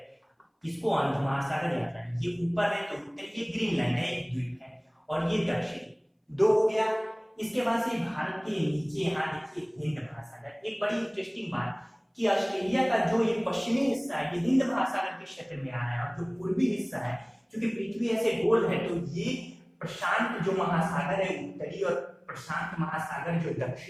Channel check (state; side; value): identical; both; correlation 1.00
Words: इसको अंध महासागर या अटलांटिक। ये ऊपर है तो उत्तरी, ये ग्रीनलैंड है, एक द्वीप है, और ये दक्षिणी, 2 हो गया। इसके बाद से भारत के नीचे यहाँ देखिए हिंद महासागर। एक बड़ी इंटरेस्टिंग बात कि ऑस्ट्रेलिया का जो ये पश्चिमी हिस्सा है, ये हिंद महासागर के क्षेत्र में आ रहा है, और जो पूर्वी हिस्सा है, क्योंकि पृथ्वी ऐसे गोल है, तो ये प्रशांत जो महासागर है उत्तरी, और प्रशांत महासागर जो